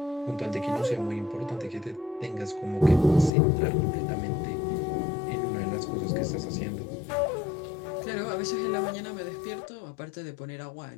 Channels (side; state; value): right; drops out; at 3.3 s